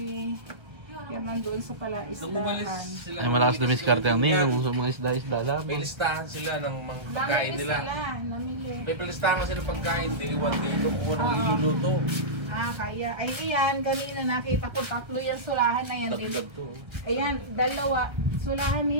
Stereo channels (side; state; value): left; late; 1.6 ms